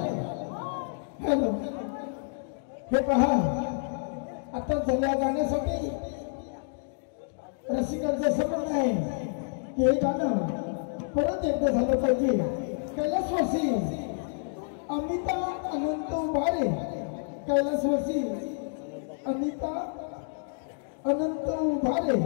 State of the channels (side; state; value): right; silent; digital silence